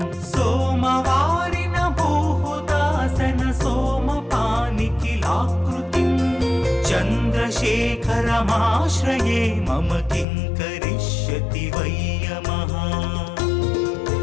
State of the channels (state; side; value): drops out; right; at 10.2 s